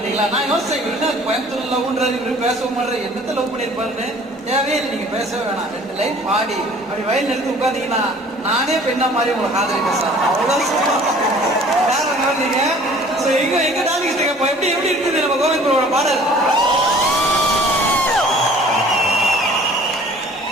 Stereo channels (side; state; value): both; normal; correlation 0.51